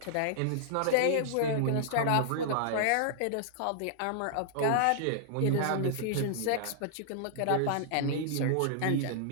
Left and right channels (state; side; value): different; both; correlation -0.01